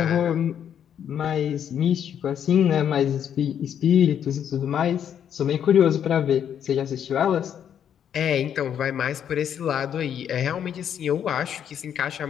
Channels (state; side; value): quieter; right; 9.0 dB